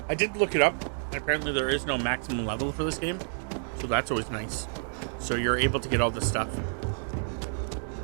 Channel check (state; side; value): silent; left; digital silence